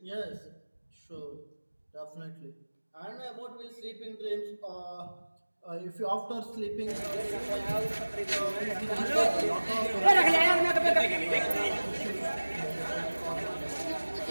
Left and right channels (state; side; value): inverted; both; correlation -1.00